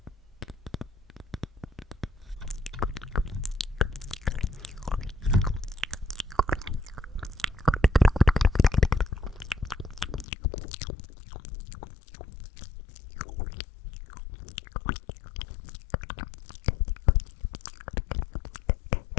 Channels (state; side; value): drops out; right; at 10.2 s